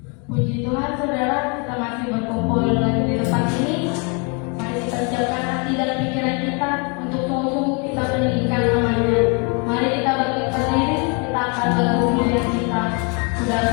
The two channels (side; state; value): right; quieter; 34.3 dB